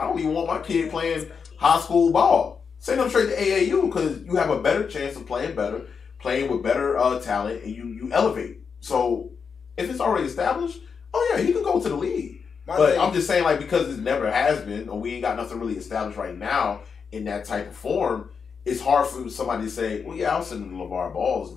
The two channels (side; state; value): right; quieter; 6.0 dB